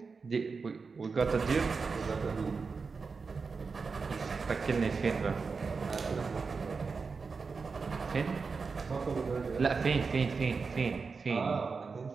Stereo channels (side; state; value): left; quieter; 4.8 dB